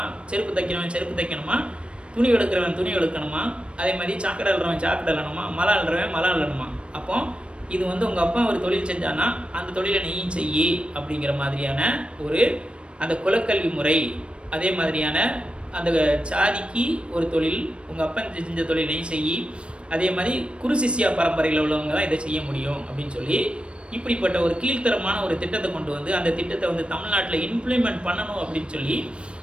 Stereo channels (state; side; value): late; left; 0.058 ms